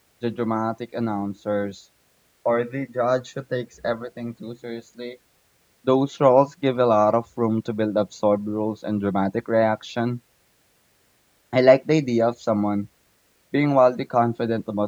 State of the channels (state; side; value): identical; both; correlation 1.00